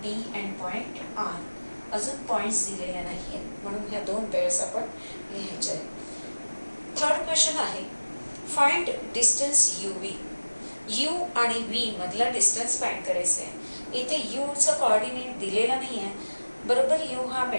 P and point R. अजून पॉईंट्स दिलेले नाही आहेत म्हणून ह्या दोन पेअर्स आपण लिहायचे आहेत. थर्ड क्वेश्चन आहे find distance U V. You आणि व्ही मधला डिस्टन्स फाइंड करायचा आहे. इथे यूचा कोऑर्डिनेट दिलेला नाही आहे. बरोबर यू हा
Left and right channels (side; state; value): both; inverted; correlation -1.00